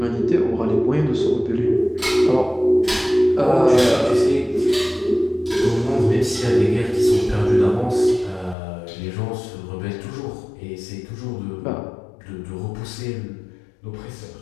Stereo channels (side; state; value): right; drops out; at 8.6 s